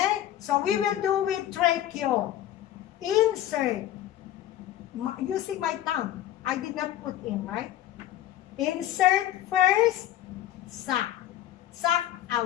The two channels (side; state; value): right; quieter; 12.5 dB